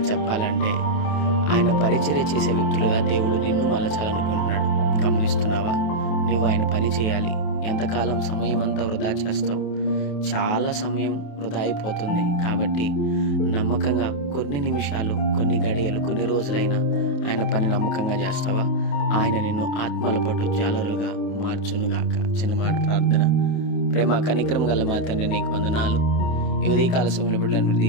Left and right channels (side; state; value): right; late; 28 ms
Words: చెప్పాలంటే ఆయన పరిచర్య చేసే వ్యక్తులుగా దేవుడు నిన్ను మలచాలనుకుంటున్నాడు. గమనిస్తున్నావా? నువ్వు ఆయన పని చేయాలి. ఎంతకాలం సమయం అంతా వృధా చేస్తావు? చాలా సమయం వృధా అయిపోతుంది. కాబట్టి నమ్మకంగా కొన్ని నిమిషాలు, కొన్ని గడియలు, కొన్ని రోజులైనా ఆయన పని నమ్మకంగా చేస్తావా? ఆయన నిన్ను ఆత్మల పట్టు జాలరులుగా మార్చునుగాక. చిన్న మాట ప్రార్థన. ప్రేమ కనికరం గల మా తండ్రి, నీకు వందనాలు. ఈ ఉదయకాల సమయంలో బిడ్డలను మీరు